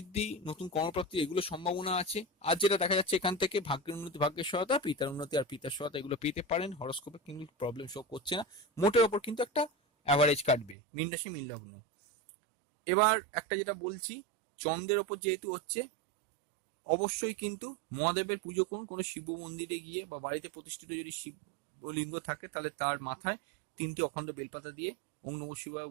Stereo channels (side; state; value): left; drops out; at 10.8 s